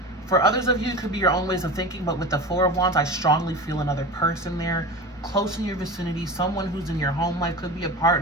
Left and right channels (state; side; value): normal; both; correlation 0.30